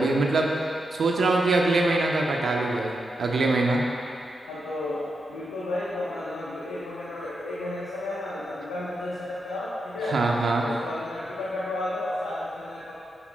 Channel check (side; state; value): both; normal; correlation 0.85